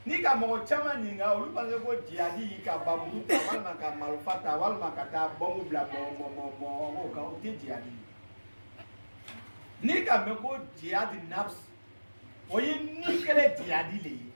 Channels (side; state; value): both; inverted; correlation -1.00